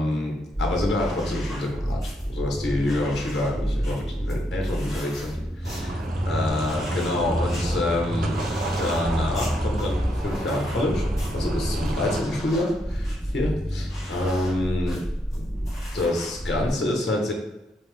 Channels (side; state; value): both; normal; correlation 0.77